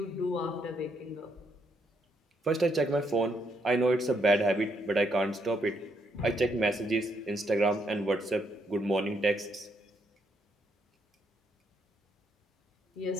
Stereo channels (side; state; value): both; normal; correlation 0.75